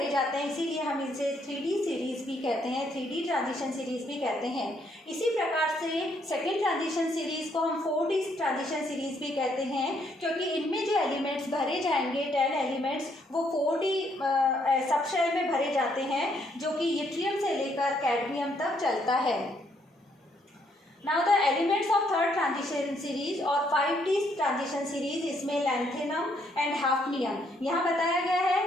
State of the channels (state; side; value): normal; both; correlation 0.71